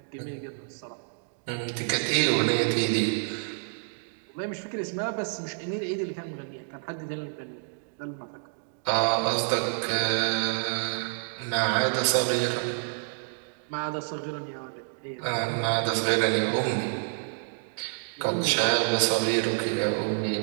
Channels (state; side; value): silent; left; digital silence